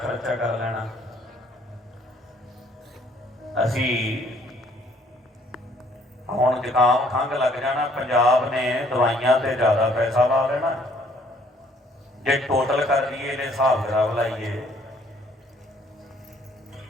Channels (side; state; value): both; normal; correlation 0.62